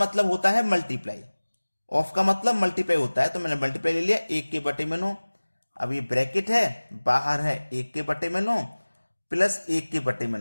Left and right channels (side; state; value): both; inverted; correlation -1.00